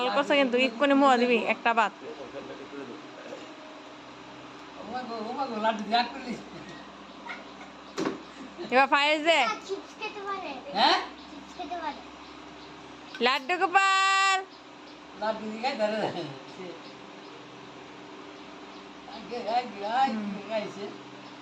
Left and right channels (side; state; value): both; identical; correlation 1.00